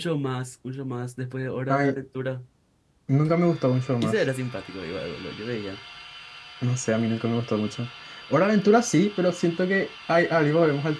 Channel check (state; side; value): identical; both; correlation 1.00